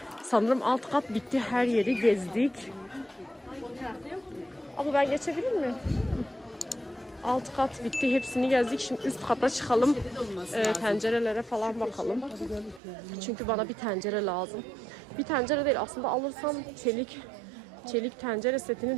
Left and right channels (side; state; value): left; drops out; at 12.8 s